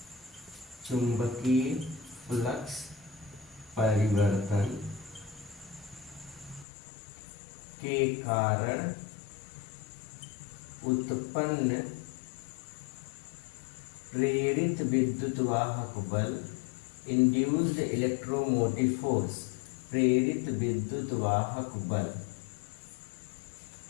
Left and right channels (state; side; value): drops out; right; at 6.7 s